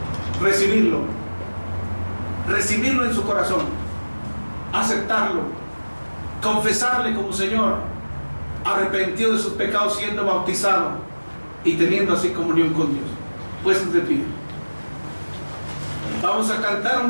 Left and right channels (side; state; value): both; inverted; correlation -1.00